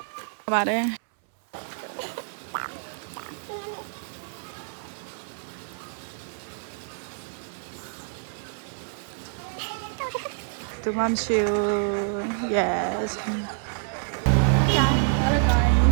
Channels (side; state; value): left; silent; 59 dB below the other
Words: ပါတယ်တူမမ်ရှူ yes